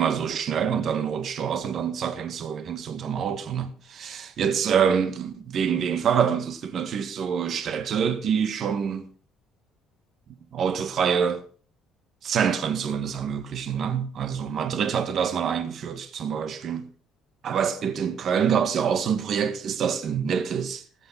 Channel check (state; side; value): quieter; left; 7.1 dB